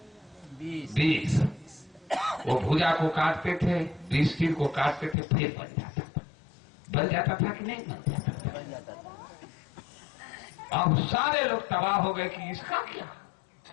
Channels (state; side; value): drops out; right; at 5.2 s